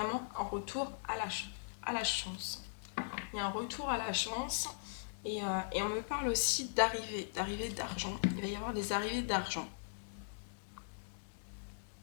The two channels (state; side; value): silent; right; digital silence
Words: un retour à la chance. Il y a un retour à la chance, et on me parle aussi d'arrivée d'argent. Il va y avoir des arrivées d'argent.